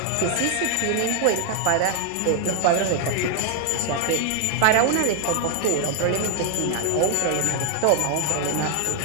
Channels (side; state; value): both; different; correlation 0.00